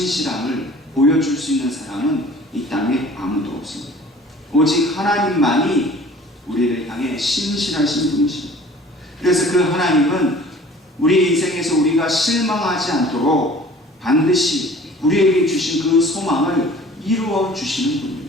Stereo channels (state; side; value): normal; both; correlation 0.48